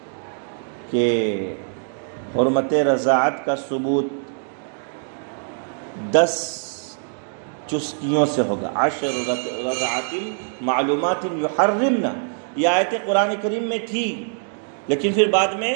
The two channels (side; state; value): left; silent; digital silence